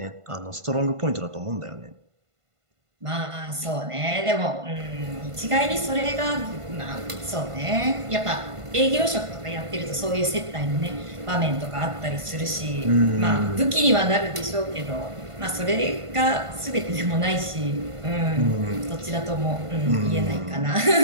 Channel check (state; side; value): late; left; 1.5 ms